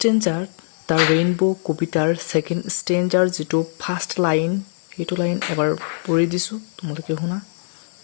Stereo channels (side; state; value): right; silent; 60 dB below the other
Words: দ্য ৰেইনবো কবিতাৰ ছেকেণ্ড ষ্টেঞ্জাৰ যিটো ফাৰ্ষ্ট লাইন, সেইটো লাইন এবাৰ পঢ়ি দিছোঁ, তোমালোকে শুনা।